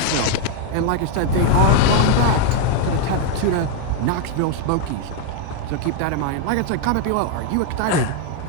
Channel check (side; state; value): both; different; correlation 0.01